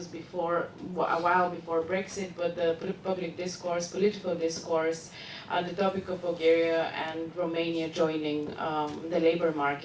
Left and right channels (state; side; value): identical; both; correlation 1.00